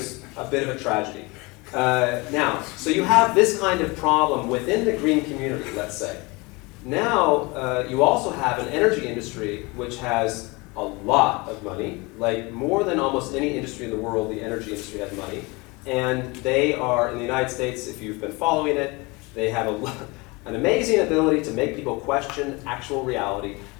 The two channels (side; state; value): right; quieter; 25.7 dB